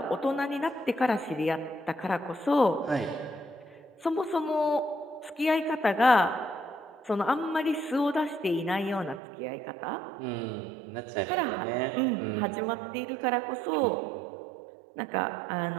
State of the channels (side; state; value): left; drops out; at 9.2 s